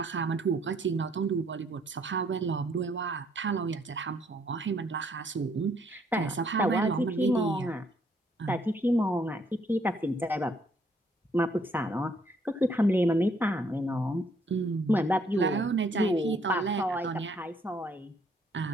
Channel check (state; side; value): normal; both; correlation 0.67